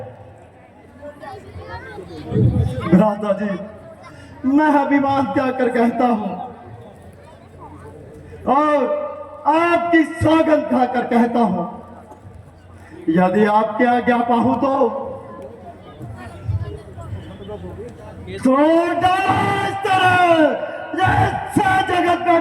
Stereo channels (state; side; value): identical; both; correlation 1.00